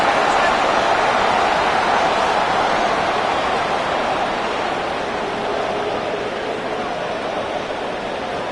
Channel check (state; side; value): identical; both; correlation 1.00